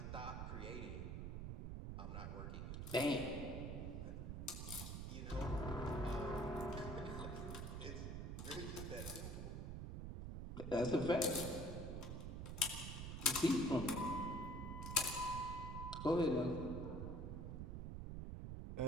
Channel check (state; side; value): noise; right; rumble, 5 dB below the sound